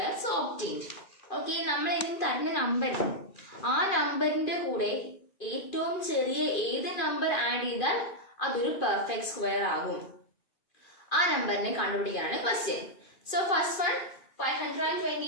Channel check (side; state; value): right; late; 2.4 ms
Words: so obtained. Okay, നമ്മൾ ഇതിന് തരുന്ന number, ആ നമ്പറിന്റെ കൂടെ ഏറ്റവും ചെറിയ ഏത് number add ചെയ്താൽ അതൊരു പെർഫെക്റ്റ് സ്ക്വയർ ആകും. ആ നമ്പറിനെ കണ്ടുപിടിക്കാനാണ് ക്വസ്റ്റ്യൻ. സോ ഫസ്റ്റ് വൺ